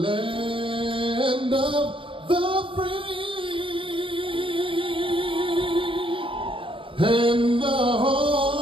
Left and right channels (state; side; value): late; left; 0.25 ms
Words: of the free and the